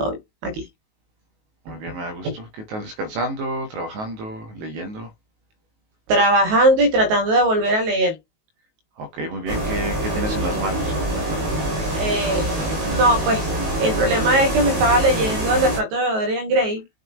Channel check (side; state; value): left; late; 19 ms